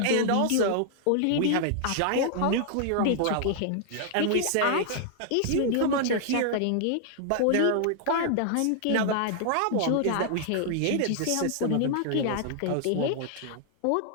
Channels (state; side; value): different; both; correlation -0.01